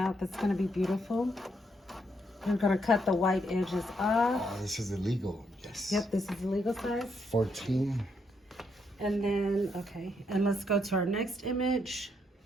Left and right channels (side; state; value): both; normal; correlation 0.76